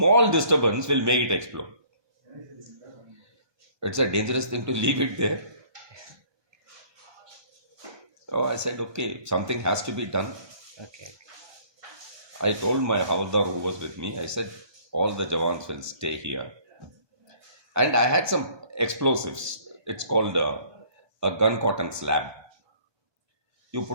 disturbance will make it explode. It's a dangerous thing to leave it there. So I said, okay, something has to be done. Okay I told my Havaldar who was with me, I said, all the Jawans will stay here. And I had some explosives. It's called a gun cotton slab. You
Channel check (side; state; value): left; late; 1.2 ms